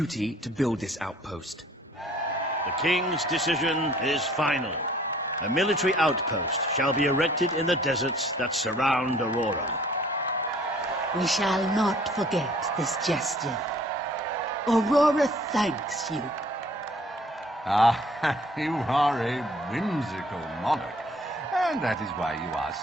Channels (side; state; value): both; normal; correlation 0.56